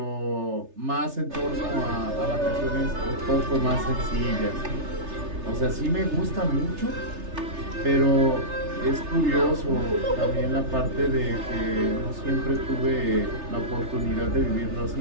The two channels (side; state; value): left; late; 3.3 ms